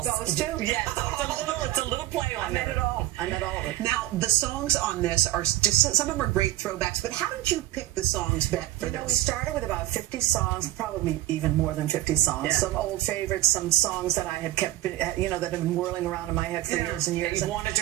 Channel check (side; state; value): left; quieter; 15.3 dB